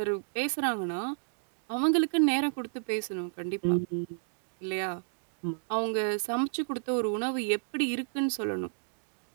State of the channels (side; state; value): left; silent; digital silence